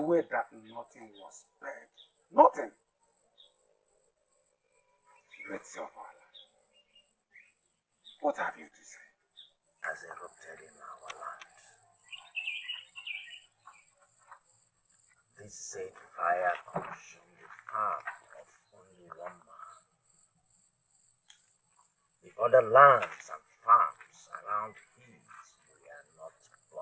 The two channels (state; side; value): identical; both; correlation 1.00